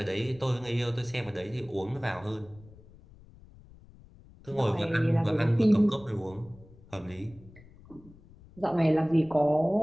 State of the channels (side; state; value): left; noise; rumble, 23 dB below the sound